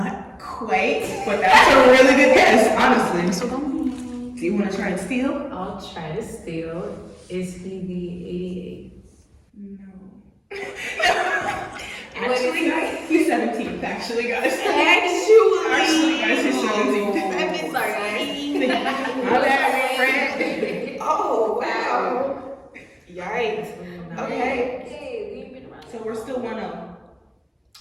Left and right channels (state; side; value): identical; both; correlation 1.00